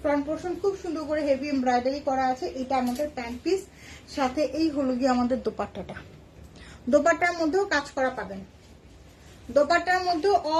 ফ্রন্ট পোর্শন খুব সুন্দর করে হেভি এমব্রয়ডারি করা আছে। এটা আমাদের প্যান্ট পিস, সাথে এই হলো গিয়ে আমাদের দোপাট্টাটা। দোপাট্টার মধ্যেও কাজ করা পাবেন, দোপাট্টার মধ্যেও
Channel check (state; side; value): identical; both; correlation 1.00